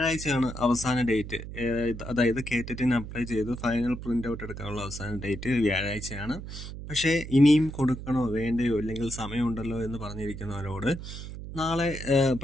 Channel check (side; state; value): right; noise; hum, 10 dB below the sound